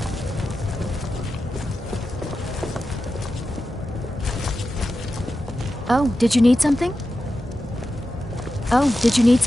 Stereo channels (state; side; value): normal; both; correlation 0.91